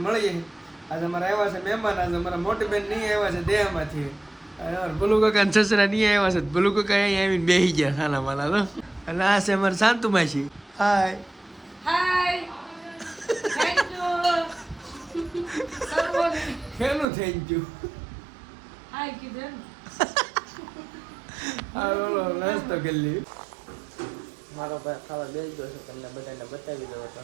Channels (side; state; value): left; drops out; at 17.1 s